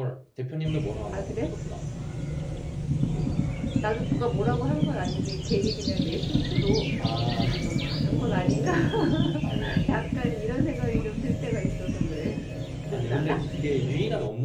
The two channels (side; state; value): both; identical; correlation 1.00